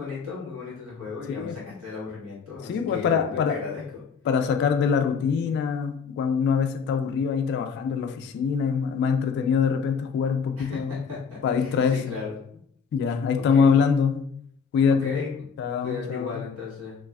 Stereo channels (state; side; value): quieter; right; 6.0 dB